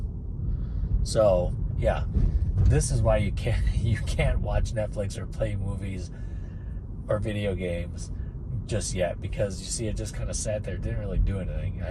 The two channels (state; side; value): identical; both; correlation 1.00